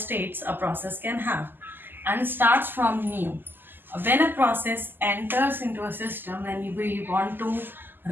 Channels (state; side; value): late; left; 0.093 ms